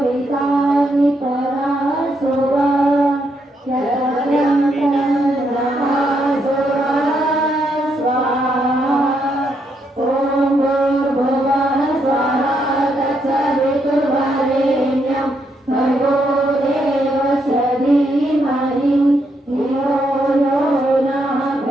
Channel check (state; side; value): normal; both; correlation 0.77